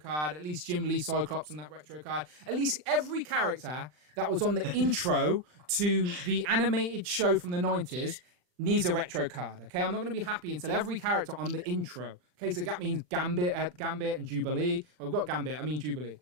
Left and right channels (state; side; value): late; left; 39 ms